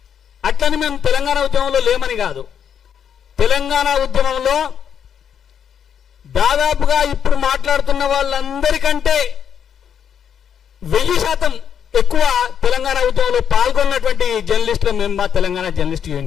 అట్లని మేము తెలంగాణ ఉద్యమంలో లేమని కాదు. తెలంగాణ ఉద్యమంలో దాదాపుగా ఇప్పుడు మాట్లాడుతున్న వాళ్ళందరికంటే 1000% ఎక్కువ తెలంగాణ ఉద్యమంలో పాల్గొన్నటువంటి జర్నలిస్టులు మేము మా తెలంగాణ జర్నలిస్ట్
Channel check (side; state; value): right; quieter; 8.3 dB